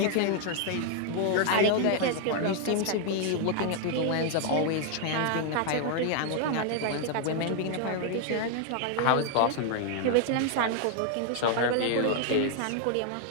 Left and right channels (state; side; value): different; both; correlation 0.00